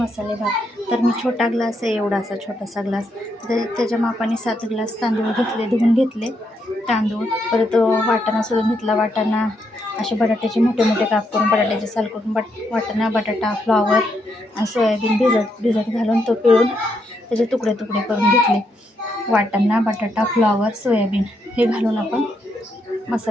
भात. तर मी छोटा ग्लास आहे, एवढासा छोटासा ग्लास. तर त्याच्या मापाने 7 ग्लास तांदूळ घेतले, धुवून घेतले तांदूळ. परत वाटाणा सोलून घेतला. वाटाणा असे बटाट्याचे मोठे मोठे काप करून, बटाट्याचे साल करून, वाटाणा, बटाटा, फ्लॉवर आणि सोयाबीन भिजत घालून तो पिळून त्याचे तुकडे तुकडे करून घेतले. वाटाणा, बटाटा, फ्लॉवर, सोयाबीन हे घालून आपण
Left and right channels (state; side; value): normal; both; correlation 0.78